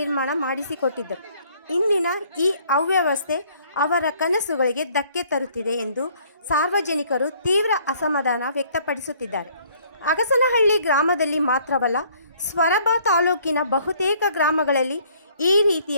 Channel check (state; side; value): inverted; both; correlation -0.61